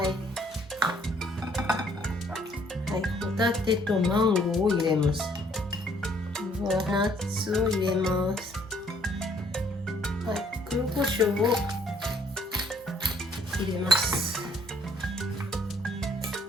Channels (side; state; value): both; normal; correlation 0.63